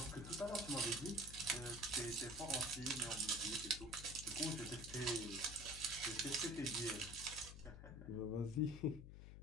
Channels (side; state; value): left; noise; hum, 11 dB below the sound